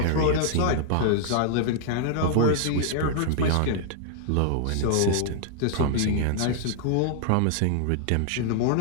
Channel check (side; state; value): both; different; correlation -0.01